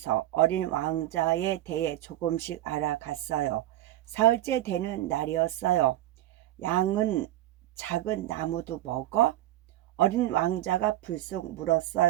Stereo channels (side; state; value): left; quieter; 14.3 dB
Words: 어린 왕자에 대해 조금씩 알아갔어요. 사흘째 되는 날이었어요. 양은 작은 나무도 먹어? 어린 왕자가 불쑥